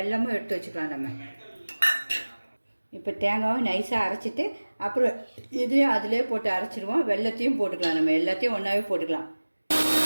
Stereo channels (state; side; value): inverted; both; correlation -1.00